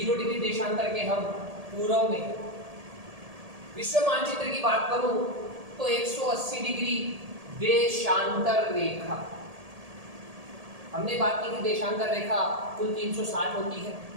डिग्री देशांतर के हम पूर्व में। विश्व मानचित्र की बात करूं तो 180 डिग्री देशांतर रेखा, हमने बात की थी देशांतर रेखा कुल 360 होती है,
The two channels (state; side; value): late; left; 1.8 ms